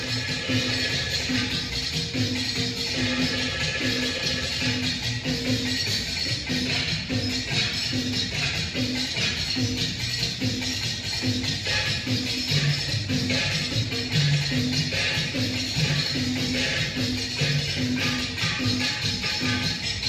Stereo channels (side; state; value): both; identical; correlation 1.00